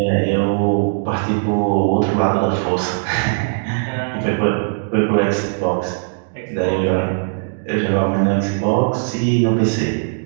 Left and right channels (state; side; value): silent; left; digital silence